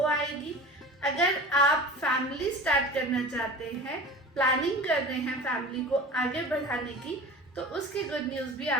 आएगी. अगर आप फैमिली स्टार्ट करना चाहते हैं, प्लानिंग कर रहे हैं फैमिली को आगे बढ़ाने की, तो उसकी गुड न्यूज भी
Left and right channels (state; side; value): normal; both; correlation 0.36